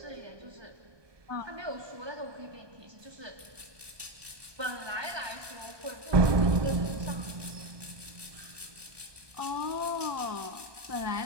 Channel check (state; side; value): late; left; 1.2 ms